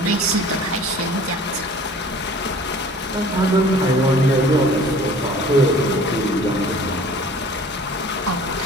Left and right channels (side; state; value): both; normal; correlation 0.47